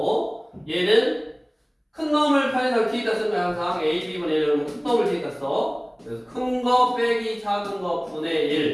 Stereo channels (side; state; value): both; identical; correlation 1.00